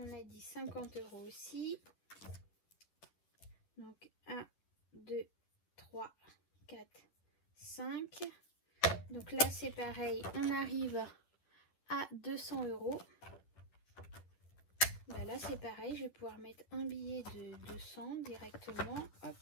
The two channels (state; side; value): late; right; 10 ms